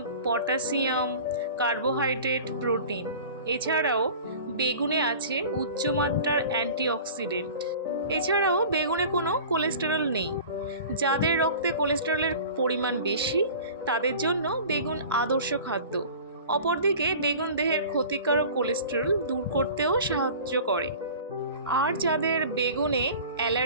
potassium, carbohydrate, protein. এছাড়াও বেগুনে আছে উচ্চমাত্রার অ্যান্টিঅক্সিডেন্ট। এছাড়াও বেগুনে কোনো কোলেস্টেরল নেই। যাদের রক্তে কোলেস্টেরলের পরিমাণ বেশি তাদের জন্য বেগুন আদর্শ খাদ্য। অপরদিকে বেগুন দেহের ক্ষতিকারক কোলেস্টেরল দূর করতেও সাহায্য করে। আর যাদের বেগুনে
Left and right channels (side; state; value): both; inverted; correlation -0.41